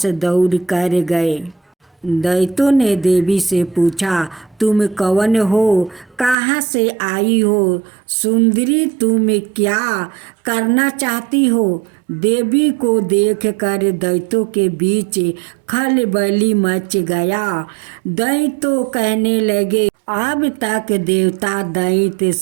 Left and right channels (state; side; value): drops out; left; at 6.4 s